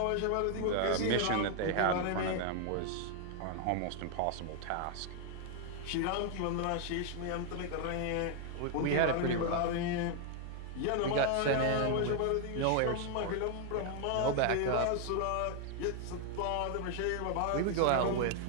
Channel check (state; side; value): different; both; correlation 0.00